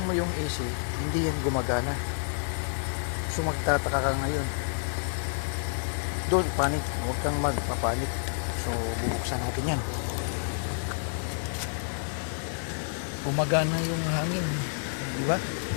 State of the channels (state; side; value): silent; right; digital silence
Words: mo yung AC, hindi yan gumagana. So, magtataka ka ngayon. Don't panic. Huwag kang magpapanik. So, bubuksan natin yan. Gumagana yung hangin. Diba?